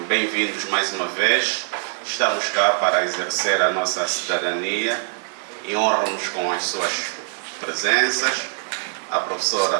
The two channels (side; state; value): left; silent; digital silence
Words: bem-vindos mais uma vez. Estamos cá para exercer a nossa cidadania e honramos com as suas presenças a